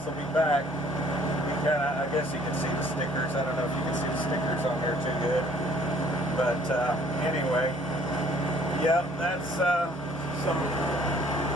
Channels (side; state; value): both; normal; correlation 0.58